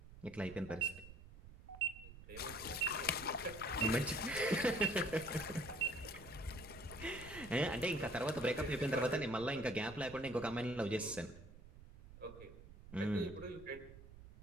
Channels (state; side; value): noise; right; rumble, 17 dB below the sound